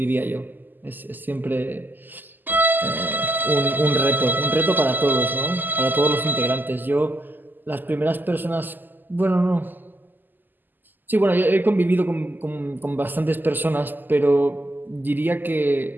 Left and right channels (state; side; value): late; left; 0.088 ms